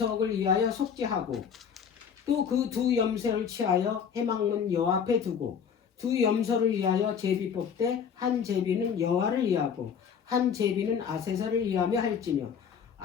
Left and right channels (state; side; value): quieter; right; 7.2 dB